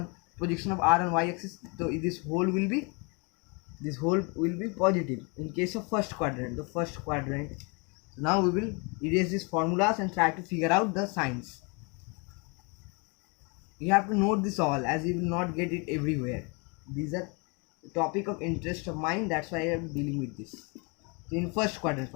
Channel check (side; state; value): right; quieter; 31.8 dB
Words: Projection of R on y-axis. So this whole will be positive in case of first quadrant. The first quadrant. So now we will erase these formulas and try to figure out the signs. You have to note this all, as you will not get it everywhere. These are topic of interest of mine, that's why I am dealing with this. So in first quadrant,